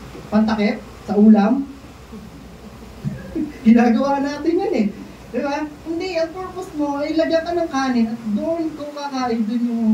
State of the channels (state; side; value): identical; both; correlation 1.00